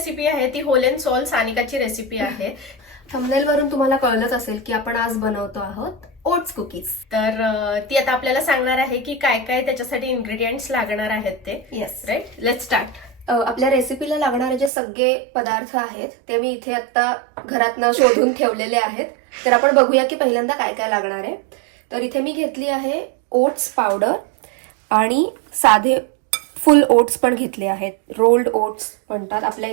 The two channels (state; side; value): drops out; left; at 14.7 s